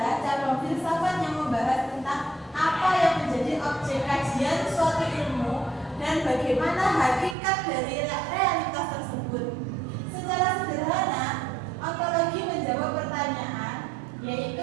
cabang filsafat yang membahas tentang apa yang menjadi objek kajian suatu ilmu dan bagaimana hakikat dari realitas tersebut. Secara sederhana, ontologi menjawab pertanyaan yaitu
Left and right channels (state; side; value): drops out; left; at 7.4 s